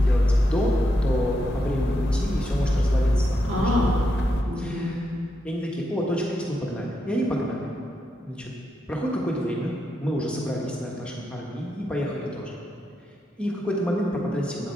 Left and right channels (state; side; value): normal; both; correlation 0.83